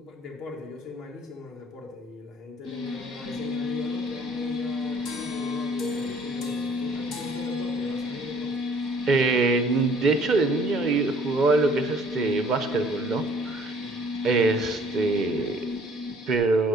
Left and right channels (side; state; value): both; normal; correlation 0.57